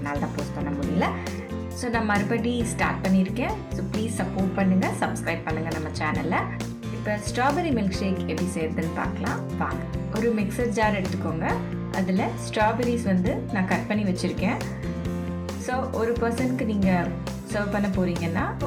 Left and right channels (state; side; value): identical; both; correlation 1.00